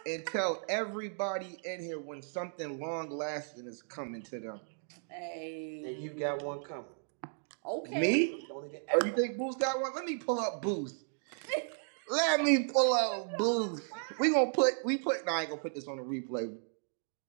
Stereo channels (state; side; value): silent; left; digital silence